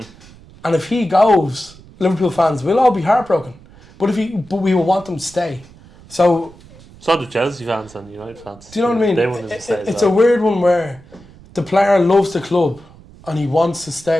if he goes, Liverpool fans will all be heartbroken. But we will want them to stay. So do Chelsea fans and United fans. Do you know what I mean? They want him to stay. It's a weird one where the player loves the club and he wants to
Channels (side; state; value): right; noise; rumble, 23 dB below the sound